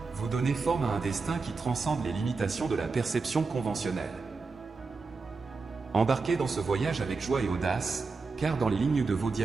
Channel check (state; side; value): quieter; left; 4.3 dB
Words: vous donnez forme à un destin qui transcende les limitations de la perception conventionnelle. Embarquez dans ce voyage avec joie et audace, car dans les lignes de vos